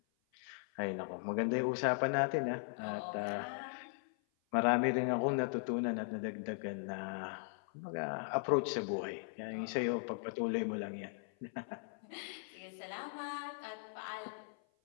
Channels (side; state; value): right; silent; 52 dB below the other